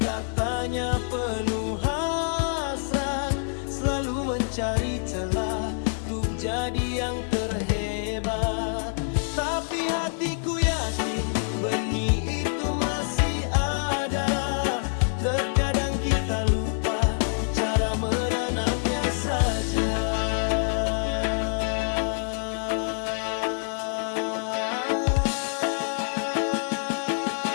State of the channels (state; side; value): silent; right; digital silence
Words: penuh hasrat, selalu mencari celah untuk jadi yang terhebat. Tapi hatiku yakin benih itu masih ada. Terkadang kita lupa cara menanamnya saja.